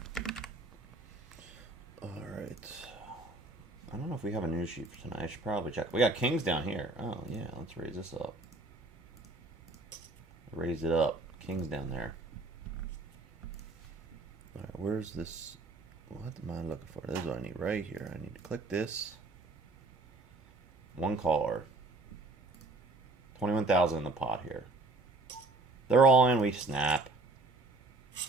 I don't know if we have a news sheet for tonight. I should probably check. We got kings down here. Oh, yeah. Let's raise this up. Raise it up. Kings down there. All right, where's this? What am I looking for? This is what I need right here. I need to click this. One caller. 21,000 in the pot here. They're all in. We snap.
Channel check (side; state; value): left; quieter; 3.2 dB